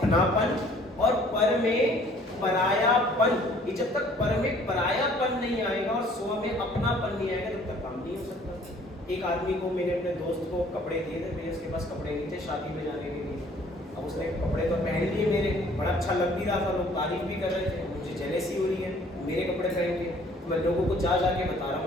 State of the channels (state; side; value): normal; both; correlation 0.57